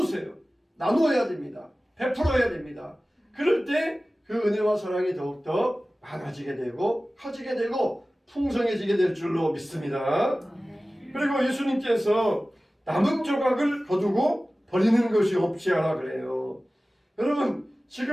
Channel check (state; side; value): normal; both; correlation 0.97